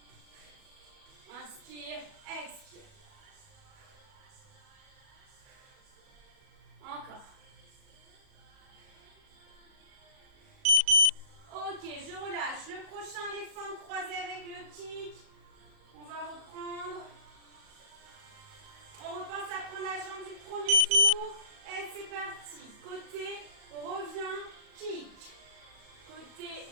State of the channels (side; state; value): left; late; 37 ms